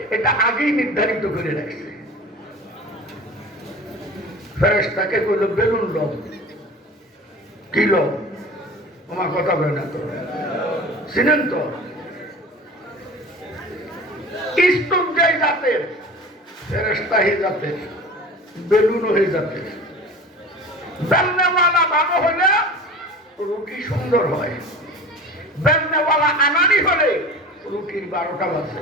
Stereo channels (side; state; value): both; normal; correlation 0.37